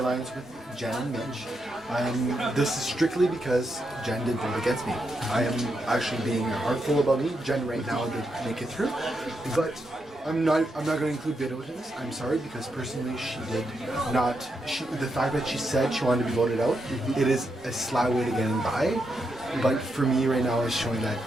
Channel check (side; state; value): both; normal; correlation 0.83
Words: with Jen and Mitch. This is strictly because Jen did vote against me. I am actually being heartful about me. Jen right now did make it through, but I'm not going to include Vito in this. I'm sorry, because personally she did not. The fact that she said she wanted to be voted out, it is a sly way to getting by. But for me right now, it's showing that